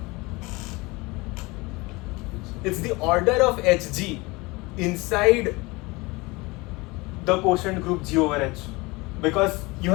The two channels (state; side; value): quieter; right; 24.0 dB